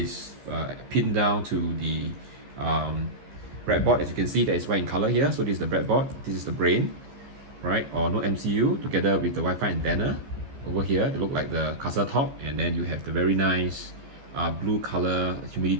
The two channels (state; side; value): late; left; 15 ms